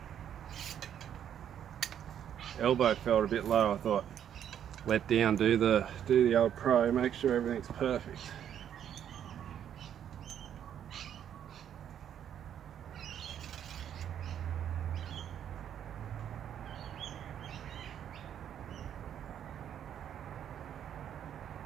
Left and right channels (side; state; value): left; quieter; 9.6 dB